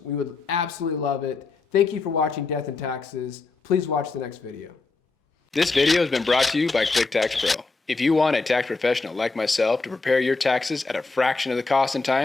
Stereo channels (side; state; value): right; quieter; 3.9 dB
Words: We would absolutely love it. Thank you for watching Death and Taxes. Please watch the next video. This video has been brought to you by QuickTax Pro. If you want a tax professional like myself to prepare your taxes at a fraction of the cost and